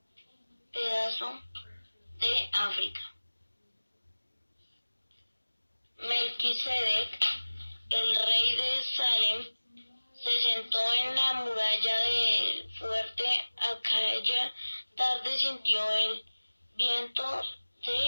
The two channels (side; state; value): both; inverted; correlation -1.00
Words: pedazo de África. Melquisedec, el rey de Salem, se sentó en la muralla del fuerte. Aquella tarde sintió el viento